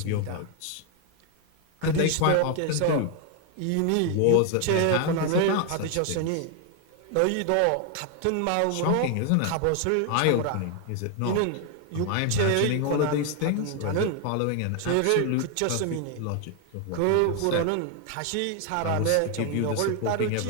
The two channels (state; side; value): different; both; correlation 0.01